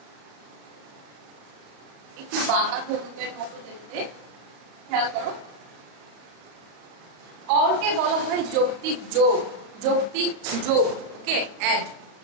একটু বাঁকা ধনুকের মতো দেখতে। খেয়াল করো, অরকে বলা হয় যৌক্তিক যোগ, যৌক্তিক যোগ। ওকে, অ্যাড।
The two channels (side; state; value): left; late; 34 ms